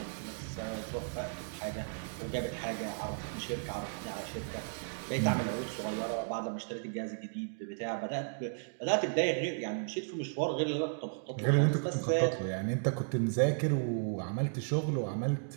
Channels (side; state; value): left; silent; digital silence